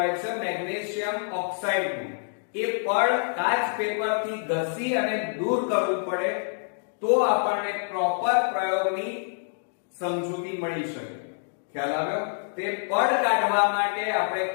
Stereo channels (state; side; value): silent; right; digital silence